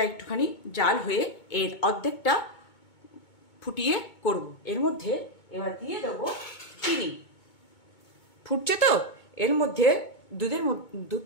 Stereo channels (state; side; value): late; right; 2.2 ms